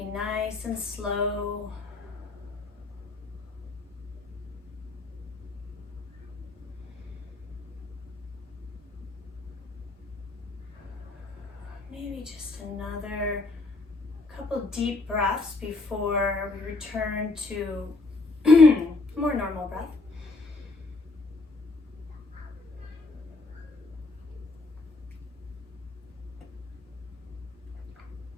nice and slow. Maybe just another couple deep breaths before we return to more normal breath.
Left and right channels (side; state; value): right; quieter; 3.4 dB